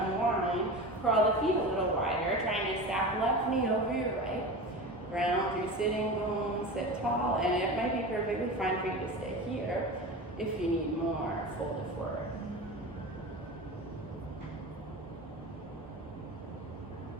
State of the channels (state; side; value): normal; both; correlation 0.30